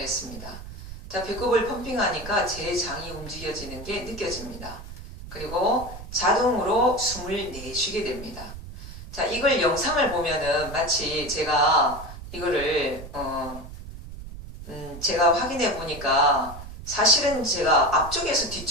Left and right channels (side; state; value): right; noise; rumble, 12 dB below the sound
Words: 자, 배꼽을 펌핑하니까 제 장이 움직여지는 게 느껴집니다. 그리고 자동으로 숨을 내쉬게 됩니다. 자, 이걸 영상을 보면은 마치 제가 이거를 제가 확인해 보니까 사실은 제가 앞쪽에서